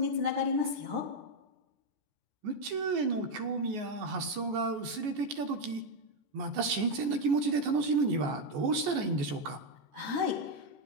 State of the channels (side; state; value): left; late; 14 ms